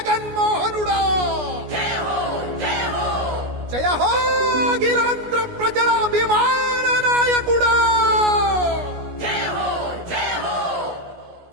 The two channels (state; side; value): late; left; 17 ms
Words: జయ హో గిరాంధ్ర ప్రజల అభిమాన నాయకుడా.